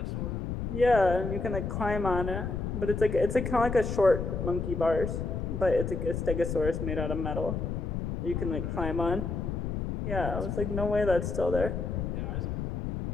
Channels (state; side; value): noise; left; rumble, 3 dB below the sound